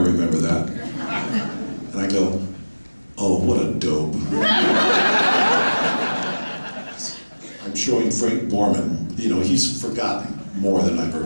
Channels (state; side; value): inverted; both; correlation -1.00